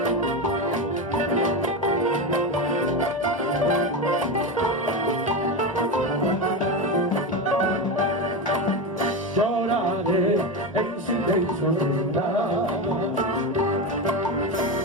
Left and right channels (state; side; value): normal; both; correlation 0.17